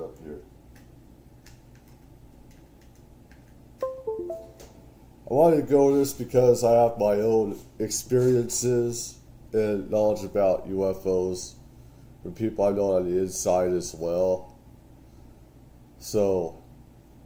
here. I wanted to go over this because I have my own experiences and knowledge about UFOs from people I know on the inside as well. So,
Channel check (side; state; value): both; identical; correlation 1.00